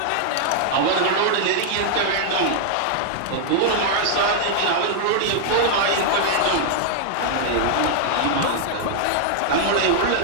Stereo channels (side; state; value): both; different; correlation -0.01